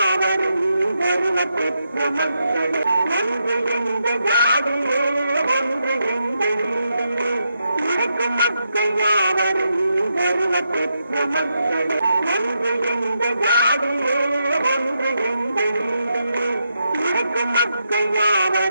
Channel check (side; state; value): both; inverted; correlation -0.83